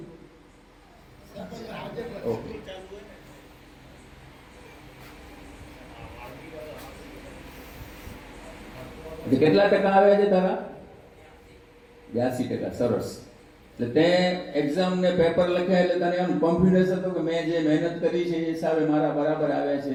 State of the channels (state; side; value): identical; both; correlation 1.00